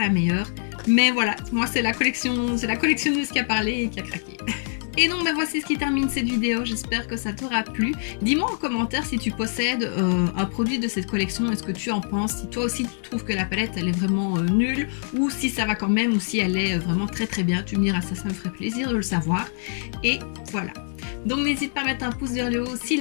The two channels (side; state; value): right; silent; digital silence